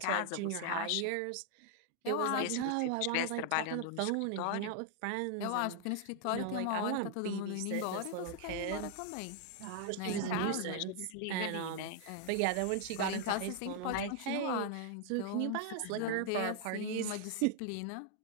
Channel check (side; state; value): both; different; correlation 0.00